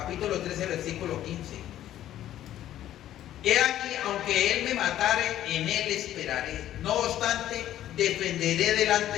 13, versículo 15. He aquí, aunque él me matare, en él esperaré. No obstante, defenderé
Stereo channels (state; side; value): quieter; right; 12.4 dB